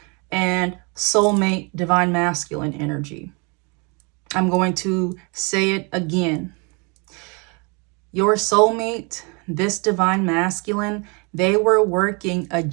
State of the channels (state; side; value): quieter; left; 31.9 dB